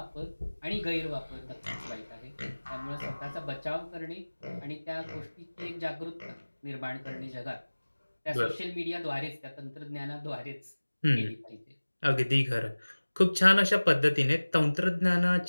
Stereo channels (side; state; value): both; inverted; correlation -1.00